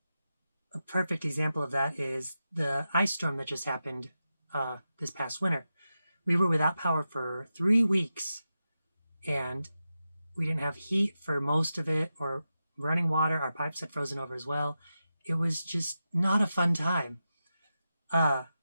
perfect example of that is the ice storm that just happened this past winter. We were without power for 3 weeks, and we didn't have heat for most of it, or running water. Our pipes had frozen over as well. It was just not a fun time.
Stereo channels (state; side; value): inverted; both; correlation -0.91